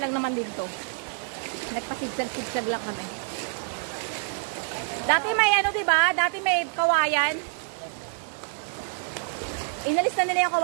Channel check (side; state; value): left; silent; 59 dB below the other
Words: naman dito. Nagpasigsag-sigsag lang kami. Dati may diba? Dati may kawayan. Inalis na nila yung